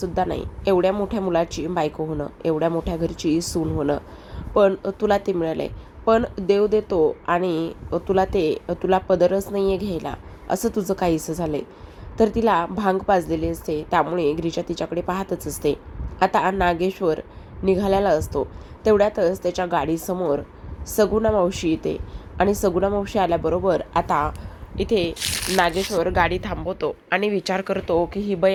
नाही एवढ्या मोठ्या मुलाची बायको होणं, एवढ्या मोठ्या घरची सून होणं, पण तुला ते मिळालंय. पण देव देतो आणि तुला पदरच नाही आहे घ्यायला, असं तुझं काहीसं झालंय. तर तिला भांग पाजलेली असते, त्यामुळे गिरिजा तिच्याकडे पाहतच असते. आता नागेश्वर निघालेला असतो. तेवढ्यातच त्याच्या गाडीसमोर सगुणा मावशी येते आणि सगुणा मावशी आल्याबरोबर आता इथे नागेश्वर गाडी थांबवतो आणि विचार करतो की ही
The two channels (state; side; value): identical; both; correlation 1.00